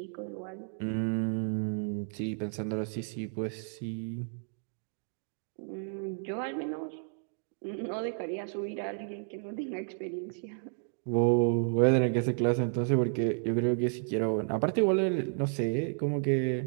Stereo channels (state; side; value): silent; left; 57 dB below the other